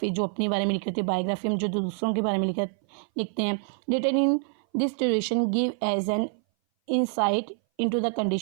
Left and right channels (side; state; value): left; silent; 58 dB below the other